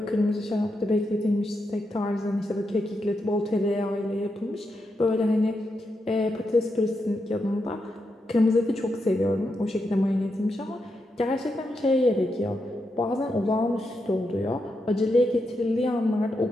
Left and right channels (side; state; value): both; normal; correlation 0.85